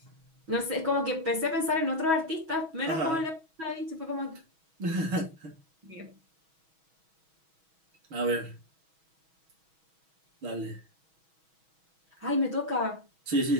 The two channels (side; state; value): left; late; 6.2 ms